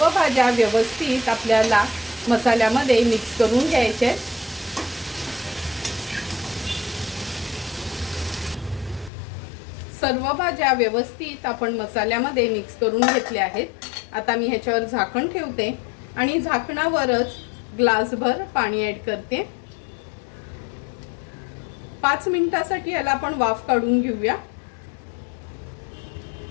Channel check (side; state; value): right; drops out; at 9.1 s